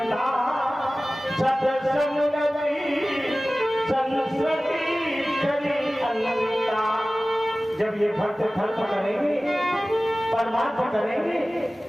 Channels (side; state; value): both; normal; correlation 0.97